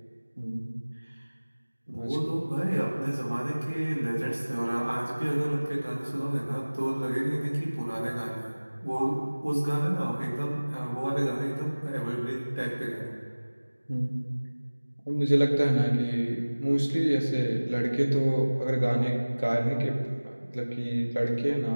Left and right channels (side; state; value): both; inverted; correlation -1.00